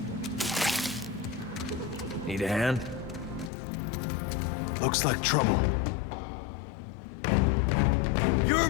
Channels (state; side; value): drops out; right; at 3.5 s